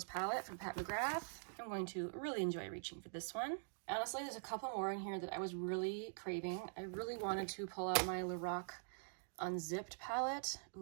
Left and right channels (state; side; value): silent; left; digital silence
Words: palette from Pat McGrath. I'm going to really enjoy reaching for this one. Honestly, there's a couple more in here that I was really craving. I really wanted to pull out my Lorac Unzipped palette.